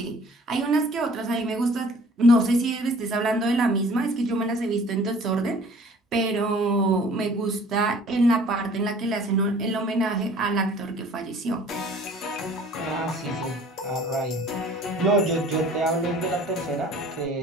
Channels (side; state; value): both; normal; correlation 0.51